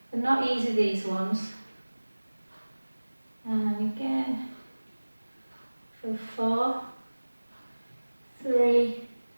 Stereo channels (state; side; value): inverted; both; correlation -1.00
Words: They're not easy, these ones. And again, for 4, 3,